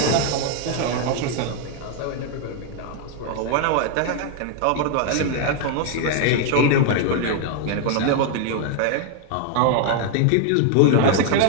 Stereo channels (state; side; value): different; both; correlation 0.00